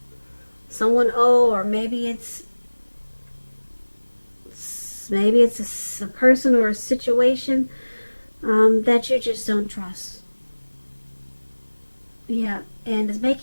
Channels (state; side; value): inverted; both; correlation -1.00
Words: someone old, or maybe it's a person or a situation that you just don't trust. Yeah, and it's